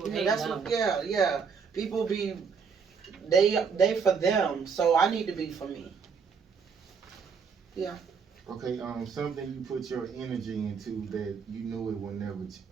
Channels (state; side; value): quieter; left; 5.9 dB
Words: hate love. Yeah. People be, they for them, so I need to be for me. Yeah. Okay, something you put your energy into that you knew it would never,